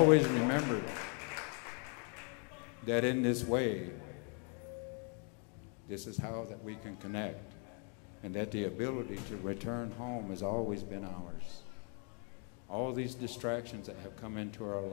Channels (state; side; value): quieter; right; 39.1 dB